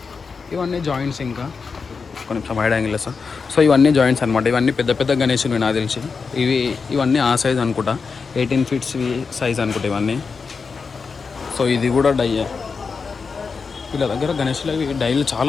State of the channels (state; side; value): quieter; right; 5.1 dB